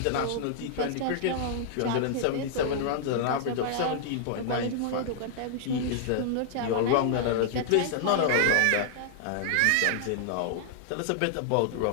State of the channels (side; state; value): both; different; correlation -0.01